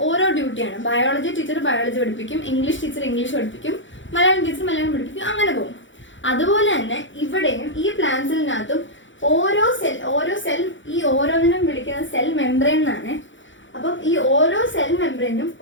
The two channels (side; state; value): right; late; 0.55 ms